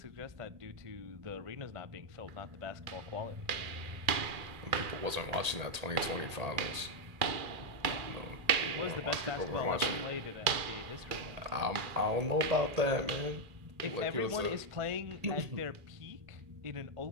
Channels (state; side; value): late; left; 1.8 ms